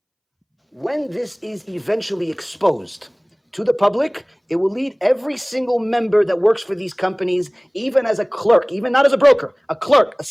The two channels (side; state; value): both; identical; correlation 1.00